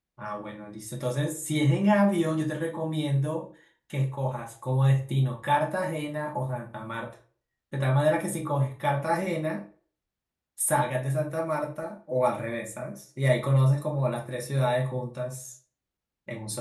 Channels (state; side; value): identical; both; correlation 1.00